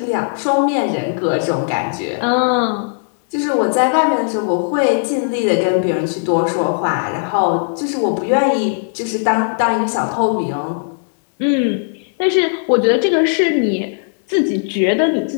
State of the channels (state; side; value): silent; right; digital silence